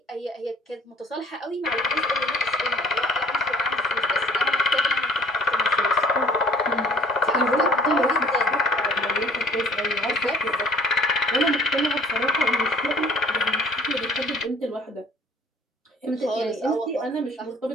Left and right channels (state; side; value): normal; both; correlation 0.54